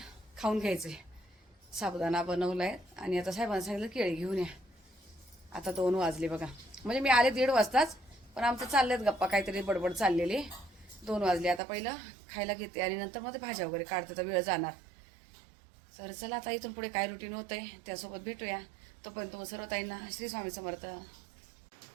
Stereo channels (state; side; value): drops out; left; at 11.6 s